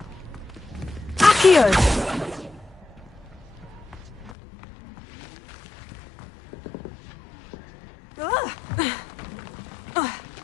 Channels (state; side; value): drops out; right; at 4.3 s